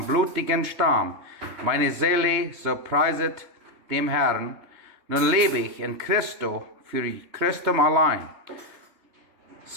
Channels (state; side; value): late; left; 3.2 ms